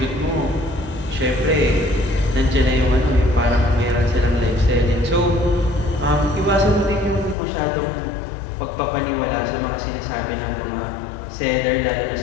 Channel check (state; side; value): drops out; right; at 7.4 s